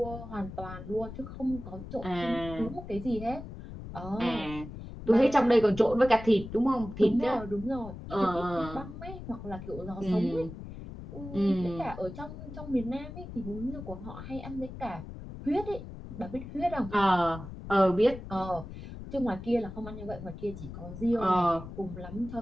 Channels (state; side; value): noise; left; rumble, 11 dB below the sound